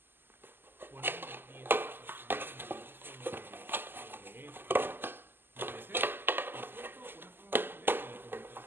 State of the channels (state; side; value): late; left; 0.097 ms